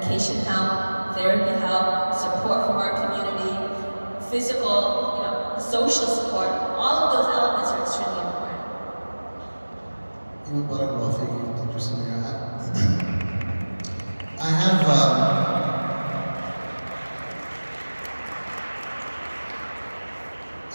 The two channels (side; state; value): both; inverted; correlation -1.00